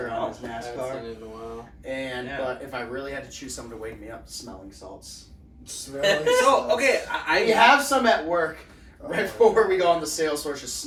Yeah, on his I haven't NASCAR. seen it in a while. And Yeah. but if I really had to choose something to wake me up, smelling salts. Smelling So salts. okay, I We have some at work Oh, right before we go on the sales floor. Just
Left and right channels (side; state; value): both; identical; correlation 1.00